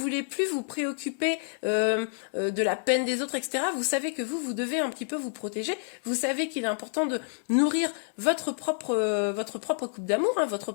plus vous préoccuper de la peine des autres, etc. Vous savez que vous devez un petit peu vous protéger. Vous savez qu'il est important de nourrir votre propre coupe d'amour, hein,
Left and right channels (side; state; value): right; silent; digital silence